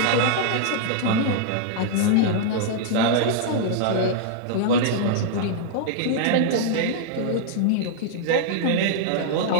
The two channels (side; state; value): both; different; correlation -0.01